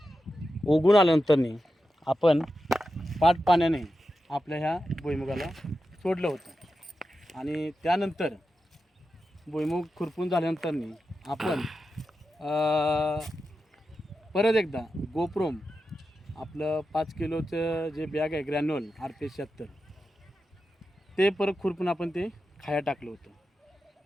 उगून आल्यानंतर आपण पाट पाण्याने आपल्या ह्या भुईमुगाला सोडलं होतं. आणि त्यानंतर भुईमुग खुरपून झाल्यानंतर आपण परत एकदा गोप्रोम आपलं 5 किलोचं जे बॅग आहे ग्रॅन्युअल RPS 76 ते परत खुरपून आपण ते खाया टाकलं होतं.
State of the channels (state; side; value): normal; both; correlation 0.90